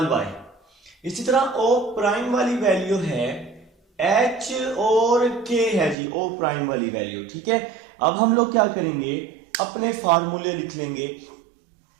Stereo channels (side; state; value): left; drops out; at 6.0 s